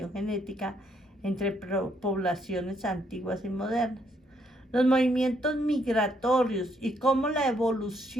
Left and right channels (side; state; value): both; normal; correlation 0.72